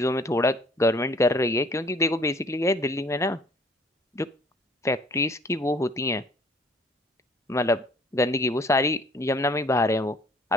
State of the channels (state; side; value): normal; both; correlation 0.55